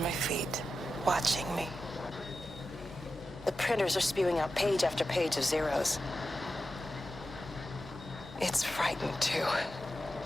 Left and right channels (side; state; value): both; normal; correlation 0.91